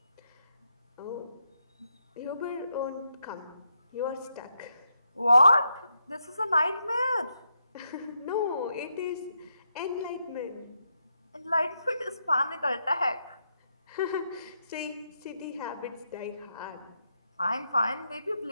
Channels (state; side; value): inverted; both; correlation -0.82